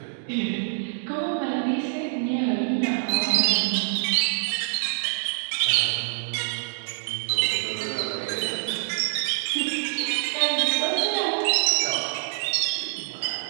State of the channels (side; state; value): left; silent; digital silence